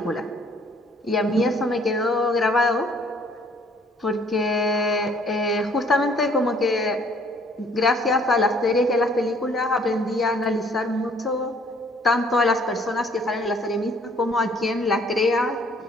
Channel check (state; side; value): normal; both; correlation 0.60